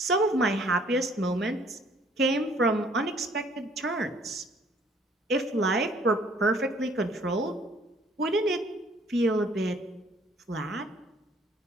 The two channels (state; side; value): normal; both; correlation 0.59